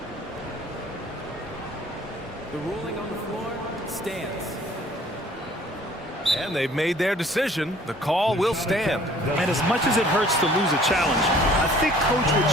The ruling on the floor stands. And they've made their decision. The call will stand. And as much as it hurts to lose a challenge, I think Coach would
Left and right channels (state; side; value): normal; both; correlation 0.54